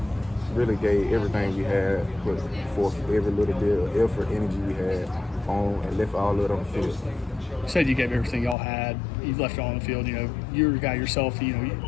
gave everything we had, put forth every little bit of effort, energy we had on, and left all of it on the field. You said you gave everything y'all had. You left it all on the field. You know, you're a guy yourself. You know, you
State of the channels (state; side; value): drops out; right; at 8.6 s